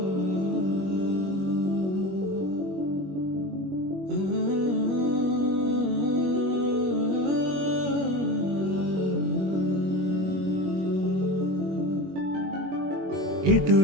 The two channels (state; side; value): late; left; 21 ms